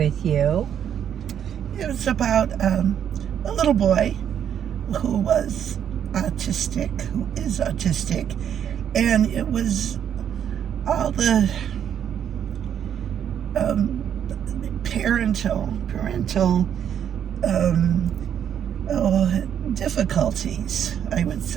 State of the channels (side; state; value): left; quieter; 9.1 dB